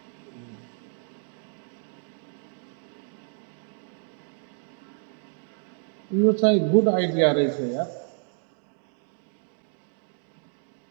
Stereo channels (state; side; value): silent; left; 58 dB below the other